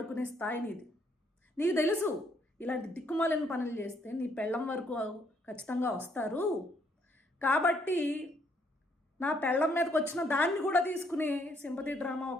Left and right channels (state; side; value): normal; both; correlation 0.70